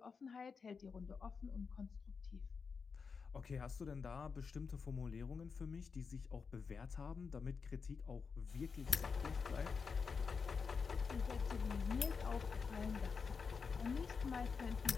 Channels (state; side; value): quieter; right; 5.4 dB